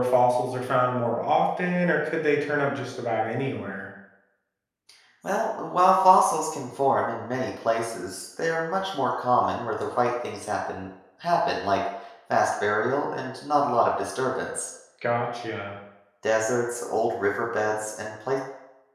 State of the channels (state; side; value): identical; both; correlation 1.00